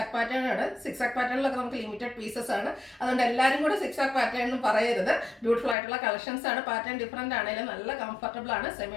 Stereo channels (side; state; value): right; drops out; at 5.8 s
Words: പാറ്റേൺ ആണ്. സിക്സാക് പാറ്റേണിലൊക്കെ നമുക്ക് ലിമിറ്റഡ് പീസസ് ആണ്. അതുകൊണ്ട് എല്ലാവരും കൂടെ സിക്സാക് പാറ്റേൺ എന്ന് പറയരുത്. ബ്യൂട്ടിഫുൾ ആയിട്ടുള്ള കളക്ഷൻസ് ആണ്. പാറ്റേൺ ഡിഫറെൻ്റ് ആണെങ്കിലും നല്ല കംഫർട്ടബിൾ ആണ്.